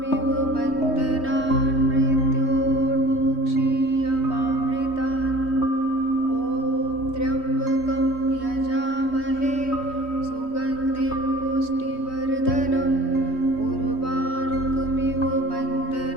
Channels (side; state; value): right; late; 3.1 ms